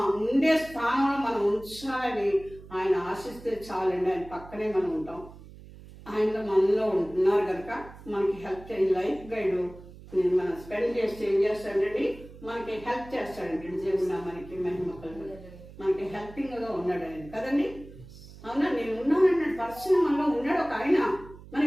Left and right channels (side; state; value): right; noise; hum, 18 dB below the sound